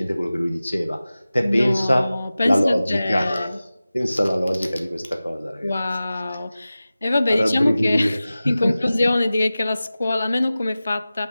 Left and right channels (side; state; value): both; inverted; correlation -0.96